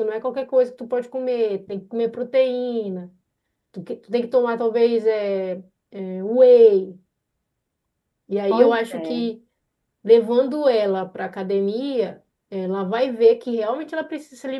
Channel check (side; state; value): both; identical; correlation 1.00